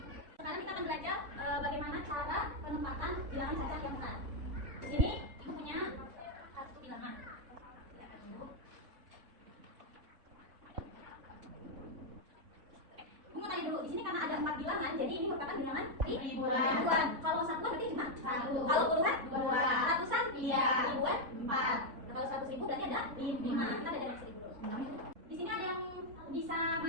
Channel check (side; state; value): left; late; 4.6 ms